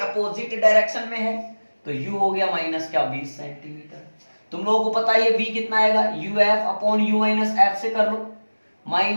डायरेक्शन में है, तो U हो गया माइनस क्या 20 सेंटीमीटर। तुम लोगों को पता है ये V कितना आएगा? UF upon U minus F से कर लो,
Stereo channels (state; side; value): inverted; both; correlation -1.00